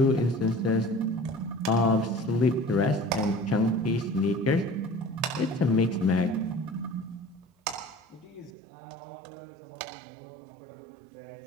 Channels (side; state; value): left; drops out; at 8.5 s